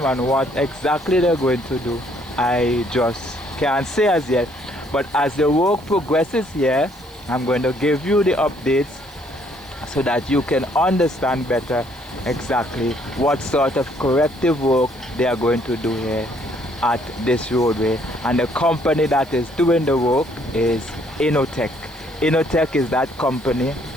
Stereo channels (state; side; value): noise; right; hiss, 25 dB below the sound